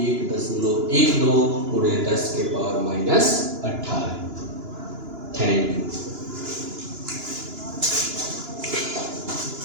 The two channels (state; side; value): late; left; 2.9 ms